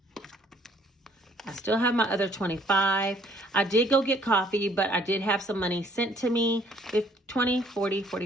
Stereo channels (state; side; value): normal; both; correlation 0.61